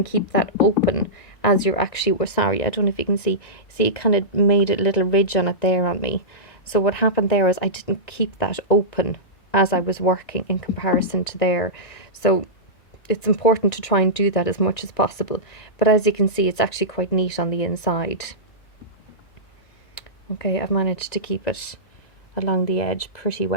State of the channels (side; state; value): right; late; 1.9 ms